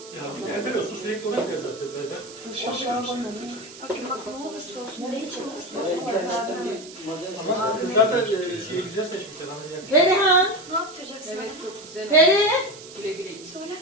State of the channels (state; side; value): noise; right; hiss, 17 dB below the sound